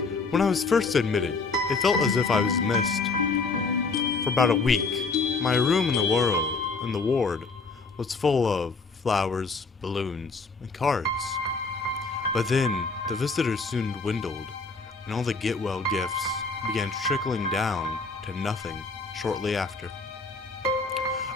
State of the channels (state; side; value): quieter; right; 4.1 dB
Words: When I was first admitted, it felt as if I was missed. For about a week, my room in the ward was full of flowers, balloons, and cards. But then, the visitors soon dwindled, and all the get-well gifts began trickling down to nothing shortly after.